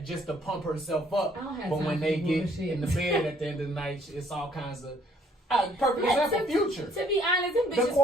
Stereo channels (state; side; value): normal; both; correlation 0.63